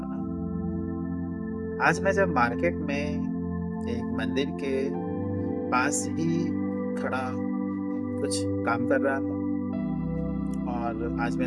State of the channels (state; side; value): identical; both; correlation 1.00